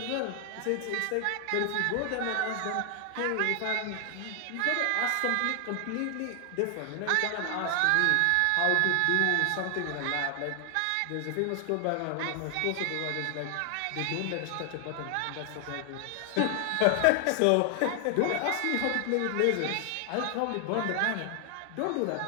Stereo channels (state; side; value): different; both; correlation 0.00